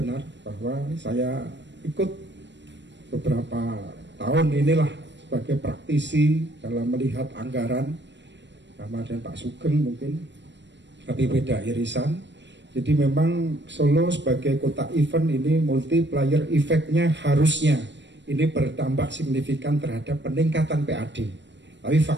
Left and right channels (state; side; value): late; left; 0.52 ms